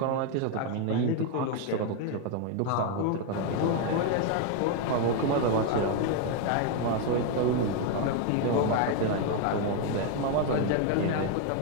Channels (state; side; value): different; both; correlation 0.01